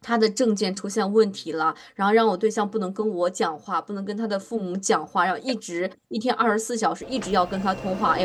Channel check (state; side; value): identical; both; correlation 1.00